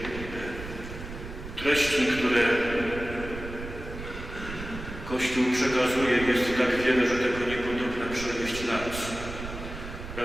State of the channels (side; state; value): right; noise; rumble, 10 dB below the sound